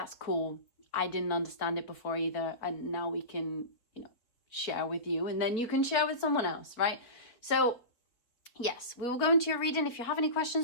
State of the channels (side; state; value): right; late; 4.5 ms